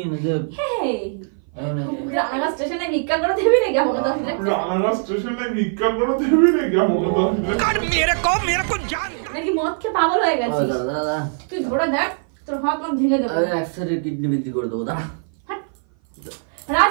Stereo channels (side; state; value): left; silent; 58 dB below the other